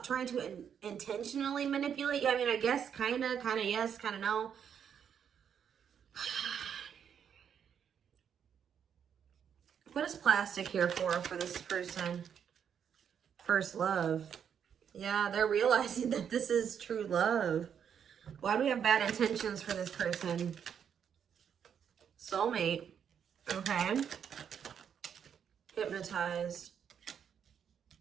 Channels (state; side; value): quieter; left; 8.0 dB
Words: trying to intentionally manipulate you. I mean, I guess kind of yes, kind of no. What is plastic here for this person? First love. Yeah, they're realizing that this is true love. Why do we have bad intentions for this person? Soulmate. Okay. Hypnotized.